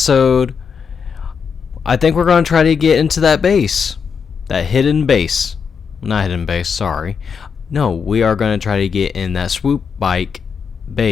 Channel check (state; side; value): quieter; right; 6.3 dB